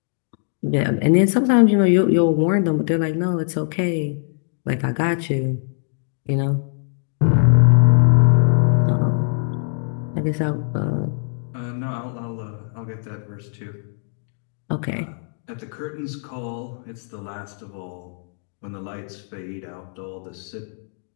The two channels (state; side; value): silent; right; digital silence